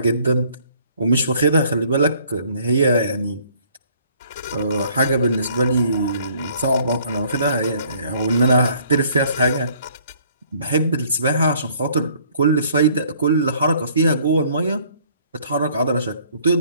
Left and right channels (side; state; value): both; inverted; correlation -0.60